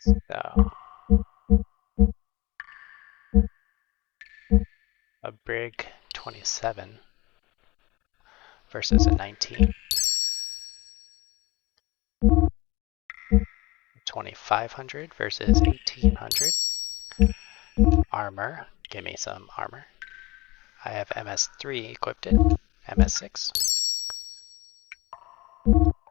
So a Brig 27 versus a 19. 2500 versus 1800. Armor, give me some armor. I have MS3 equipped in, MS6.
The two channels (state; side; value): quieter; right; 21.8 dB